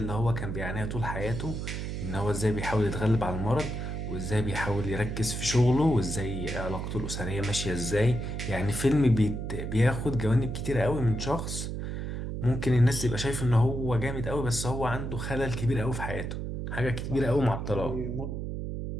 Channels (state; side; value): noise; right; hum, 4 dB below the sound